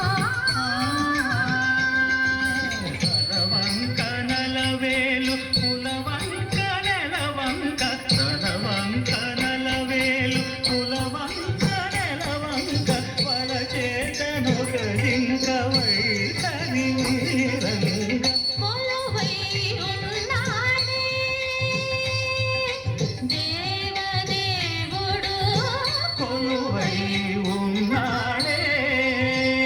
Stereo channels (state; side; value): identical; both; correlation 1.00